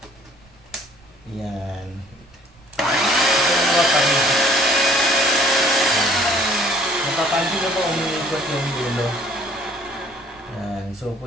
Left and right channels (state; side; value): noise; right; rumble, 28 dB below the sound